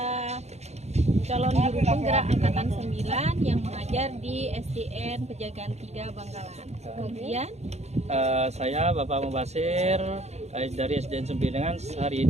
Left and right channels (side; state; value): left; late; 0.32 ms